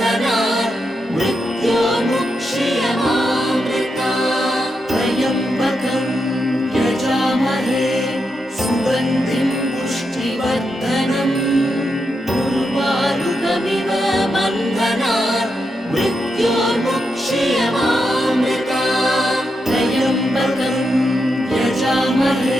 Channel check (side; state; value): both; normal; correlation 0.85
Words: मृत्योर्मुक्ष्यमामृतात् त्र्यम्बकं यजामहे सुगन्धिं पुष्टिवर्धनम् उर्वारुकमिव बन्धनात् मृत्योर्मुक्ष्यमामृतात् त्र्यम्बकं